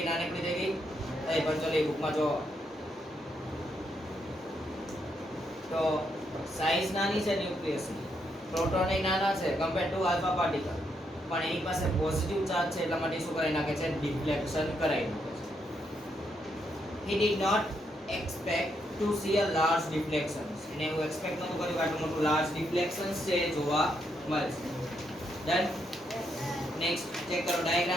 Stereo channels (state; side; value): normal; both; correlation 0.78